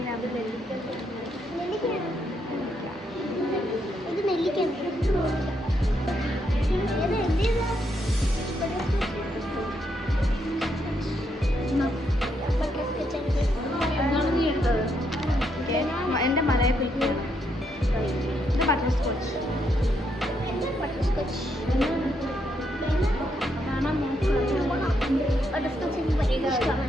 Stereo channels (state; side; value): normal; both; correlation 0.77